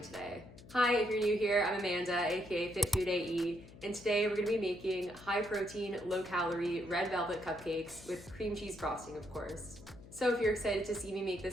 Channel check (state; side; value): noise; left; hum, 19 dB below the sound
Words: Hi, if you're new here, I'm Amanda, aka Fit Food AE, and today we're gonna be making high protein, low calorie red velvet cupcakes with cream cheese frosting, of course. So if you're excited to see me make